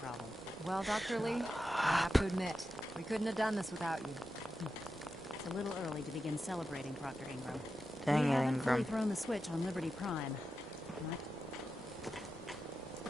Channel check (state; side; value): normal; both; correlation 0.90